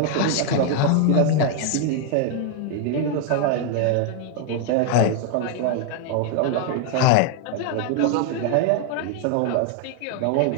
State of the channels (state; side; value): different; both; correlation 0.00